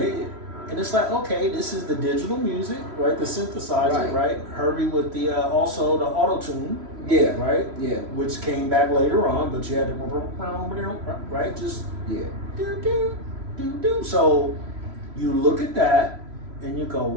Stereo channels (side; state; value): left; late; 3.0 ms